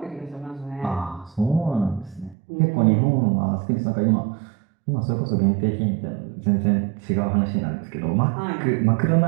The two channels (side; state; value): left; drops out; at 2.4 s